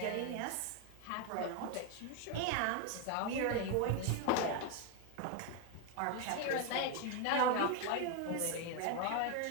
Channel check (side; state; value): both; different; correlation 0.01